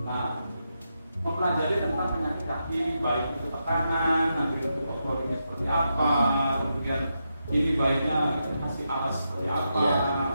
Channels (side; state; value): both; inverted; correlation -0.85